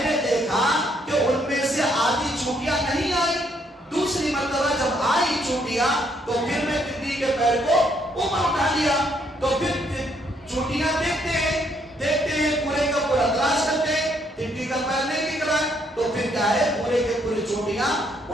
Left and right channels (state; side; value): normal; both; correlation 0.70